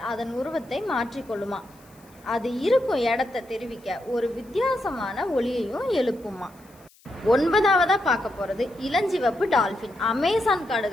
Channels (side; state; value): left; noise; hiss, 29 dB below the sound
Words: அதன் உருவத்தை மாற்றிக்கொள்ளுமா. அது இருக்கும் இடத்தை தெரிவிக்க ஒரு வித்தியாசமான ஒலியையும் எழுப்புமா. ஒன்பதாவதா பார்க்க போறது இளஞ்சிவப்பு டால்பின். அமேசான்